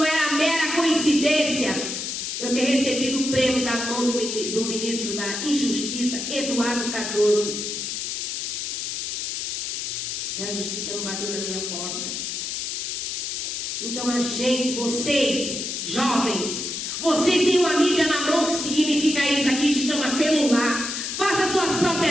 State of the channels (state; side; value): noise; left; hiss, 3 dB below the sound